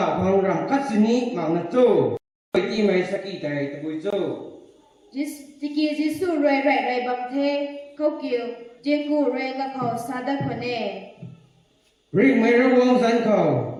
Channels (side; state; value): both; identical; correlation 1.00